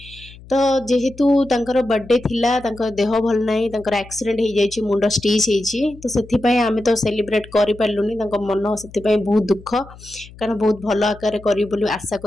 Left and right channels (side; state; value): left; noise; hum, 20 dB below the sound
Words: तो जेहेतु तांकर बर्थडे थिला तांकर देह भल नाही तांकर एक्सीडेंट हो जाइए मुंड स्टिच होइछि तो सेथिपई आमे तो सेलिब्रेट करि पारलुनी तांकर मन सेथिपई बहुत दुख कारण बहुत भल आकार करी बोली आशा